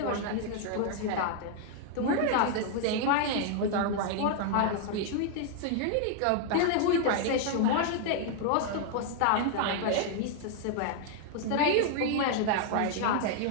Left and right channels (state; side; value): different; both; correlation 0.00